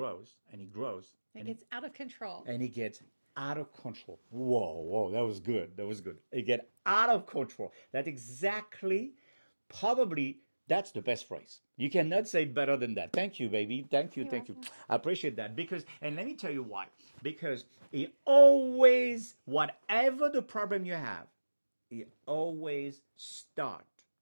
and it grows It gets out of control. and it gets out of control. Whoa, whoa, that was good. That was good. It get out of control. That's exactly, probably, that's the best phrase. You cannot say it better than that. Thank you, baby. Thank you, You're thank you. welcome. I appreciate that because, and let me tell you why. Because it always, whatever the problem you have, it always start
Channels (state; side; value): inverted; both; correlation -1.00